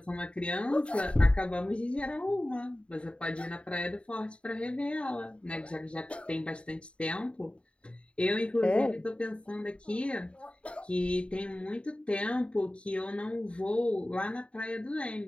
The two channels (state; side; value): late; right; 0.059 ms